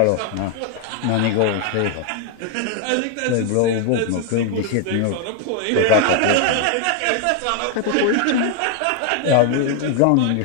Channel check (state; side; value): different; both; correlation 0.01